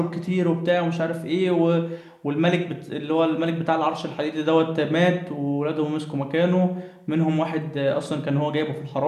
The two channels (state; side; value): identical; both; correlation 1.00